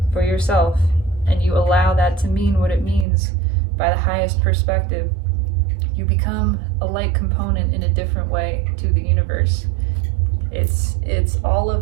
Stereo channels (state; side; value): drops out; left; at 3.1 s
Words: for yourself, and you allow that to mean what it means by the highest perspective, you become a light component in a different way to the universe. It's all